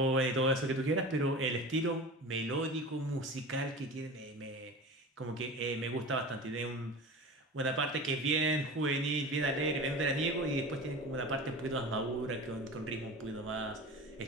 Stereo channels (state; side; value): normal; both; correlation 0.33